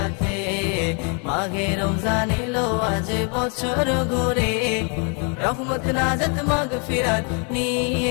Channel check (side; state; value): right; quieter; 36.6 dB